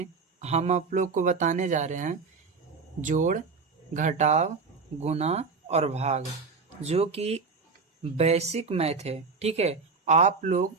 हम आप लोग को बताने जा रहे हैं जोड़, घटाव, गुणा और भाग, जो कि बेसिक मैथ है। ठीक है, आप लोग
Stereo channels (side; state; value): left; quieter; 4.7 dB